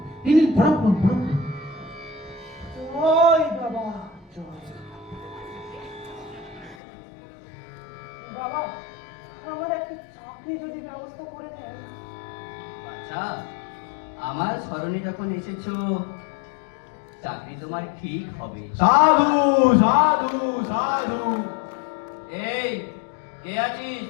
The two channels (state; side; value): drops out; right; at 6.8 s